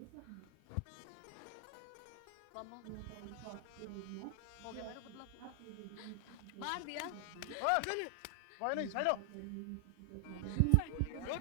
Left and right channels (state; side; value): different; both; correlation 0.00